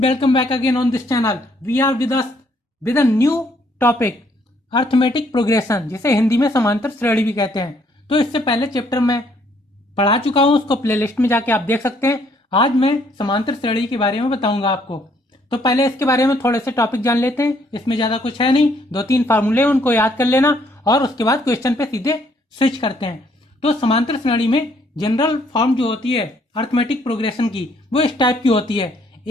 back again on this channel. We are with a new topic, arithmetic progression, जिसे हिंदी में समांतर श्रेणी भी कहते हैं. तो इससे पहले चैप्टर में पढ़ा चुका हूं, उसको प्लेलिस्ट में जाके आप देख सकते हैं. आज मैं समांतर श्रेणी के बारे में बताऊंगा आपको. तो पहले इसके बारे में थोड़े से टॉपिक जान लेते हैं. इसमें ज्यादा कुछ है नहीं, 2-3 फार्मूले उनको याद कर लेना और उसके बाद क्वेश्चन पे सीधे स्विच करते हैं. तो समांतर श्रेणी में जनरल फॉर्म जो होती है अर्थमेटिक प्रोग्रेशन की, वो इस टाइप की होती है:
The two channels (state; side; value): normal; both; correlation 0.67